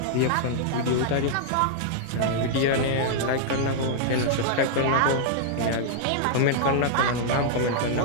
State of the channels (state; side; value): different; both; correlation -0.01